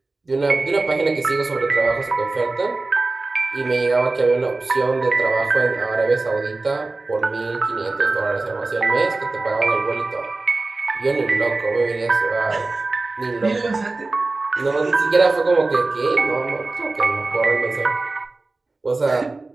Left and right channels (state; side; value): quieter; left; 3.4 dB